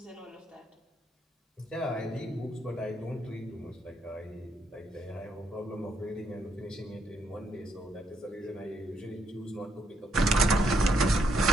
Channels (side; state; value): both; normal; correlation 0.74